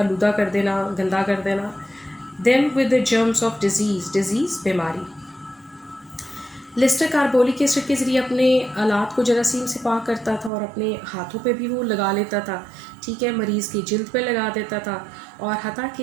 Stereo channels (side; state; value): left; drops out; at 10.5 s